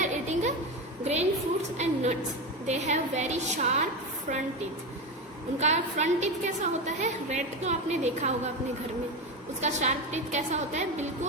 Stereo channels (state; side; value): normal; both; correlation 0.18